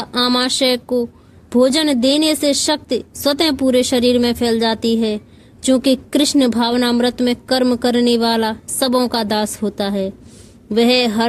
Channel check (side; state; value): both; identical; correlation 1.00